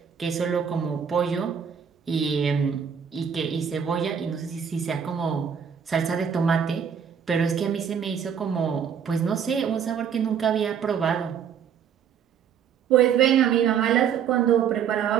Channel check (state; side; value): quieter; left; 7.7 dB